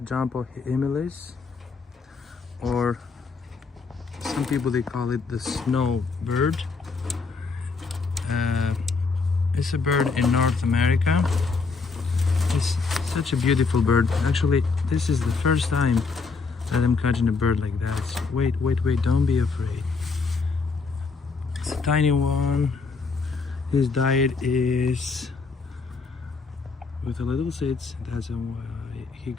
Junco hyemalis, or some people they call it the snowbird. It's a bird in North America. It's such a beautiful bird. Actually, this is the first time that I'm catching a bird like that. Wait, don't be afraid. It's a tiny one. His diet is with the little seeds. That's why he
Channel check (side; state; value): right; quieter; 4.5 dB